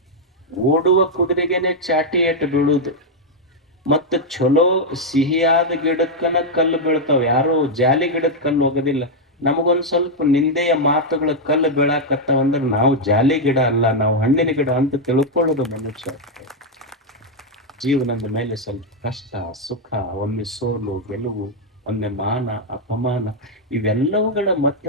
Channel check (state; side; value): normal; both; correlation -0.01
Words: ಓಡುವ ಕುದುರೆಗೆನೆ ಚಾಟಿ ಏಟು ಬೀಳುದು. ಮತ್ತ ಚಲೋ ಸಿಹಿಯಾದ ಗಿಡಕ್ಕನ ಕಲ್ಲು ಬೀಳ್ತಾವ, ಯಾರು ಜಾಲಿ ಗಿಡಕ್ಕೆ ಕಲ್ಲು ಹೋಗೋದಿಲ್ಲ. ನಮಗೊಂದ್ ಸ್ವಲ್ಪ ನಿಂದೆಯ ಮಾತುಗಳ ಕಲ್ಲು ಬೀಳಾಕತ್ತಾವ ಅಂದ್ರೆ ನಾವು ಜಾಲಿ ಗಿಡ ಅಲ್ಲ, ನಾವು ಹಣ್ಣಿನ ಗಿಡ ಅಂತ ತಿಳ್ಕೊಳ್ಳೋದು ಮನುಷ್ಯ. ಜೀವನದ ಮೇಲೆ ಸ್ವಲ್ಪ ಕಷ್ಟ ಸುಖ, ಒಮ್ಮೆ ಸೋಲು ಗೆಲುವು, ಒಮ್ಮೆ ಮಾನ ಅಪಮಾನ, ಇವೆಲ್ಲವುಗಳ